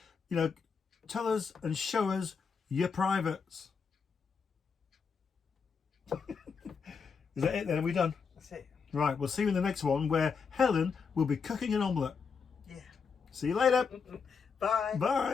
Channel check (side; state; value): right; quieter; 5.7 dB